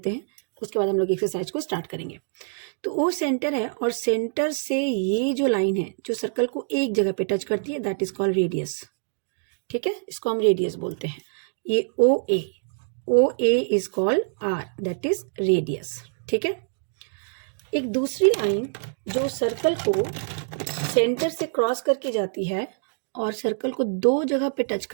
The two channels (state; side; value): silent; left; digital silence